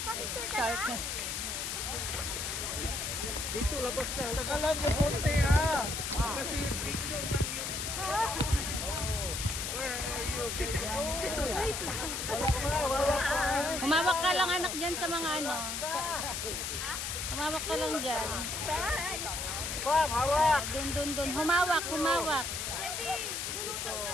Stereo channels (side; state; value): left; noise; hiss, 3 dB below the sound